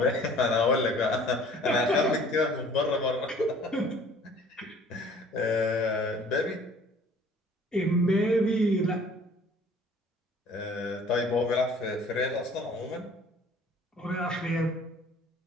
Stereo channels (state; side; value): normal; both; correlation 0.52